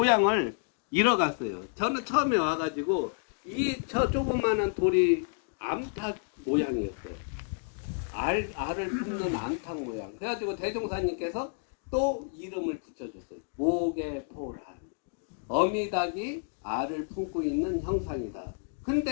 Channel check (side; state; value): right; silent; digital silence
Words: 잃어갔어요. 저는 처음에 와가지고 저 조그마한 돌이 암탉 모양이었어요. 알을 품는 암탉 모양. 그래가지고 대종사님께서 또 이름을 붙여줬어요. 목에포란. 어미닭이 알을 품고 있는 형상이다.